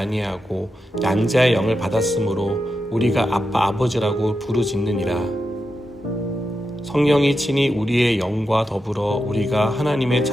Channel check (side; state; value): both; normal; correlation 0.88